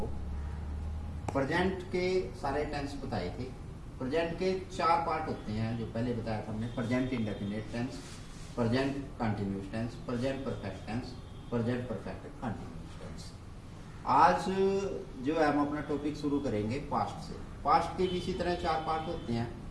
प्रेजेंट के सारे टेंस बताए थे। प्रेजेंट के 4 पार्ट होते हैं, जो पहले बताया था हमने। Present indefinite tense, present continuous tense, present perfect tense, present perfect continuous tense. आज जो है हम अपना टॉपिक शुरू करेंगे पास्ट से। पास्ट के भी इसी तरह 4 पार्ट होते हैं।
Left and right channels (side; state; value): both; identical; correlation 1.00